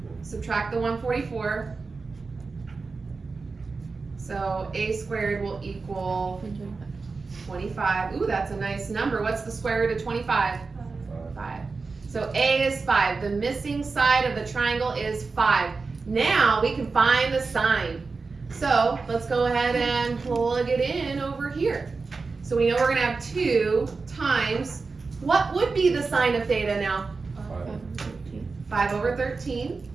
Subtract the 144. So a squared will equal 25. Ooh, that's a nice number. What's the square root of 25? 5. So a is 5. The missing side of the triangle is 5. Now we can find the sign. So let's go ahead and plug it in over here. So we know we're gonna have 2 times, what would be the sign of theta now? 5 over 13.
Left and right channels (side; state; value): left; quieter; 4.3 dB